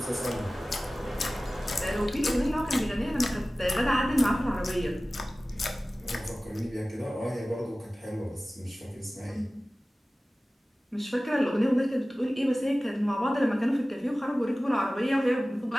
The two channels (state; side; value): normal; both; correlation 0.97